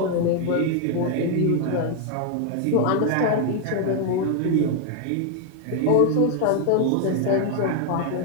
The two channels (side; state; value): both; different; correlation 0.01